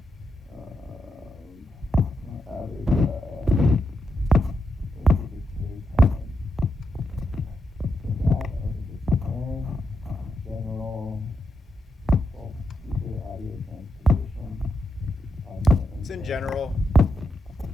general speaker audio transposition. It's in general.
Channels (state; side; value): normal; both; correlation 0.84